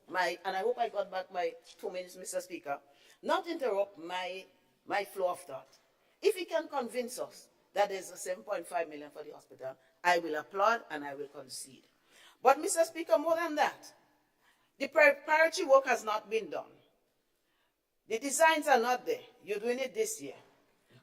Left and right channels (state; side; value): identical; both; correlation 1.00